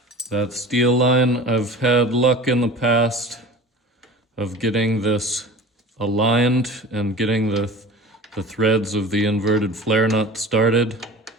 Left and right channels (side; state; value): both; normal; correlation 0.37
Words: that steel line, I've had luck in the past of getting this aligned and getting the threads of the inverted flare nut started